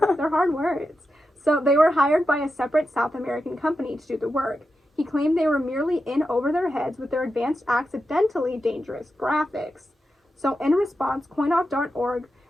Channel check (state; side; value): normal; both; correlation 0.89